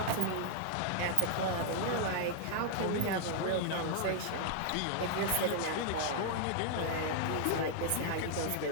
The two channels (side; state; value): both; different; correlation 0.00